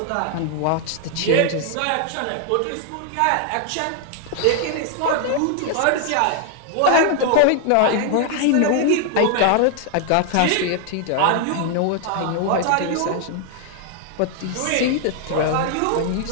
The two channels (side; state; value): both; different; correlation 0.00